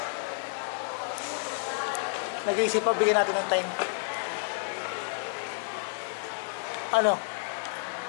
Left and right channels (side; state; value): right; silent; digital silence